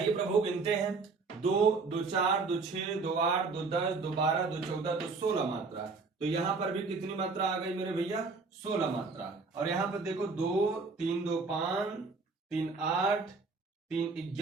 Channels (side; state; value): left; quieter; 4.2 dB